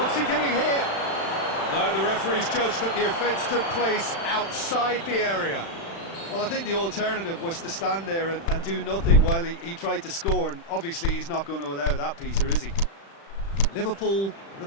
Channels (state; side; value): late; right; 36 ms